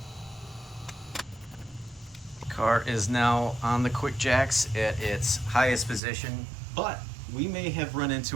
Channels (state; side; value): drops out; left; at 6.0 s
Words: Car is now on the QuickJacks at its highest position, but we may have run